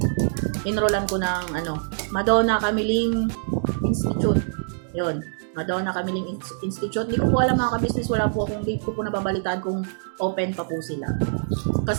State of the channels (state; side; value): silent; left; digital silence